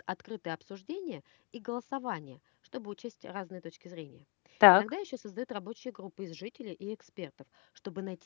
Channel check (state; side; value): quieter; right; 31.0 dB